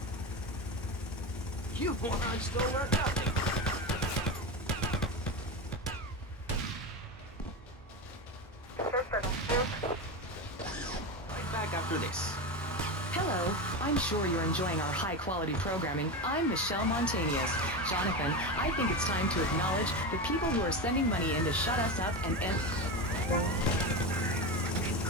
You morons still learn nothing. Right back after this. Hello, I'm sure you're enjoying our high-quality programming. I'm Michelle Montanius. Jonathan, I think it's time to acknowledge the people who are sending money in to shut us up and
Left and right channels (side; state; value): both; normal; correlation 0.20